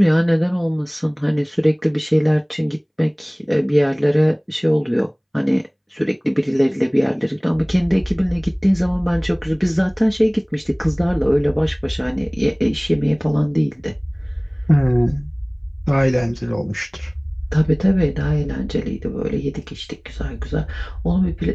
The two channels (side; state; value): both; identical; correlation 1.00